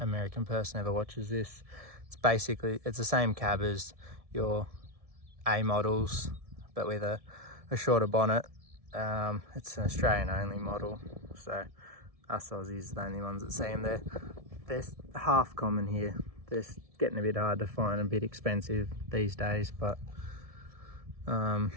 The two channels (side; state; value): left; late; 1.7 ms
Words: person ever watches this, it's the same cab as your A models, but with a shorter bonnet. It's an Australian only model, so us Aussies are the only ones that see them. They're half common here. They're getting a bit hard to find, a bit expensive these days, but